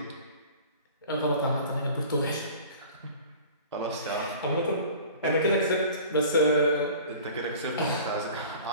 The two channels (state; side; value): inverted; both; correlation -0.43